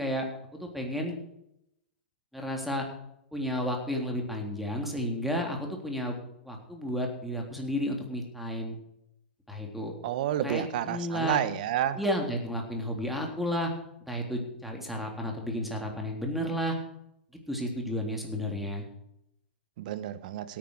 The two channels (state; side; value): normal; both; correlation 0.07